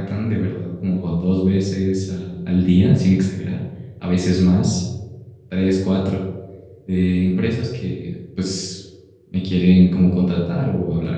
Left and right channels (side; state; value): both; identical; correlation 1.00